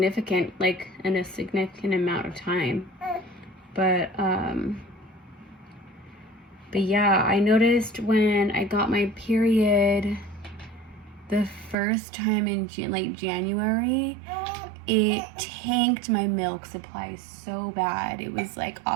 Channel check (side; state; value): left; drops out; at 11.8 s